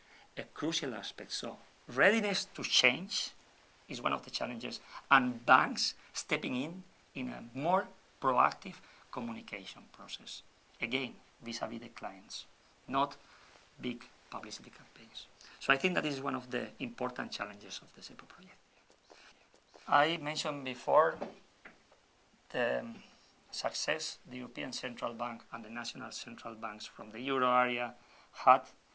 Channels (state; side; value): identical; both; correlation 1.00